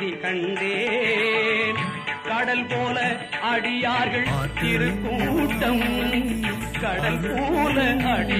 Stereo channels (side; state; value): both; identical; correlation 1.00